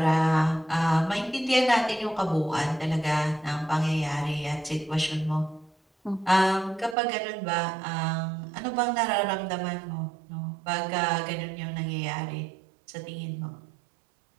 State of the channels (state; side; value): drops out; left; at 7.0 s